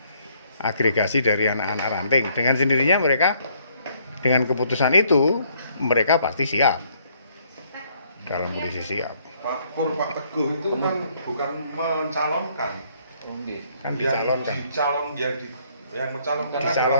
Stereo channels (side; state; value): both; inverted; correlation -0.66